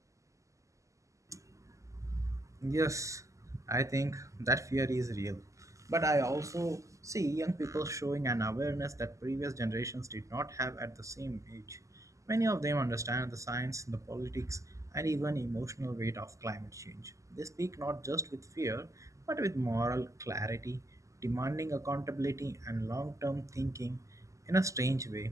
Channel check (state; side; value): late; left; 0.16 ms